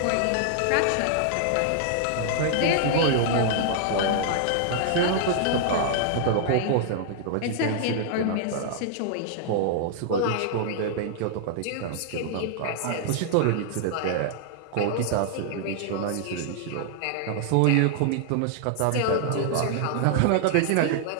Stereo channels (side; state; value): both; different; correlation -0.01